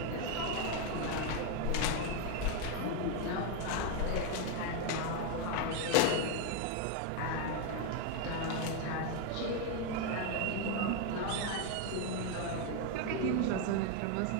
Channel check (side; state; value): both; different; correlation 0.01